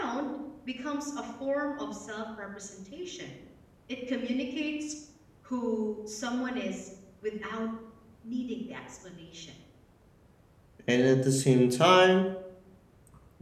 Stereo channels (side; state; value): both; identical; correlation 1.00